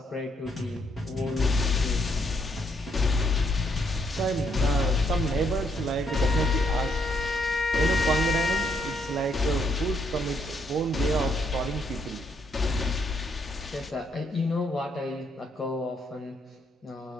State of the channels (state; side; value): normal; both; correlation 0.73